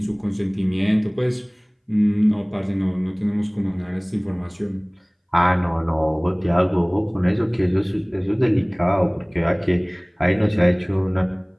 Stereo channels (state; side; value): identical; both; correlation 1.00